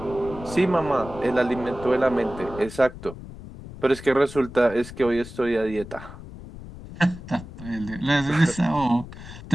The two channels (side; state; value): left; noise; rumble, 14 dB below the sound